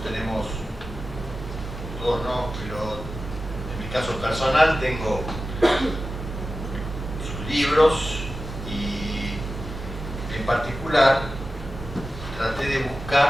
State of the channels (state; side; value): normal; both; correlation 0.94